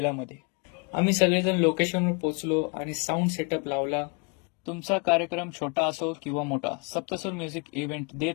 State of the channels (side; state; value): right; quieter; 33.7 dB